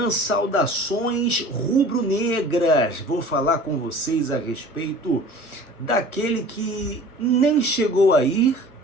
Saudações Rubro-Negras. Vou falar com vocês a respeito daquele que nem chegou a ir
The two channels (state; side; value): late; right; 1.4 ms